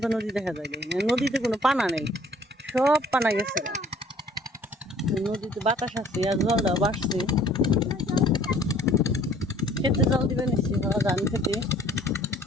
নদী দেখা যায়? নদীতে কোনো পানা নেই, সব পানা গেছে। নদীতে বাতাস আছে আর জলটাও বাড়ছে। খেতে জল দিবে নিচ্ছি, ধান খেতে।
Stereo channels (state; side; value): normal; both; correlation 0.56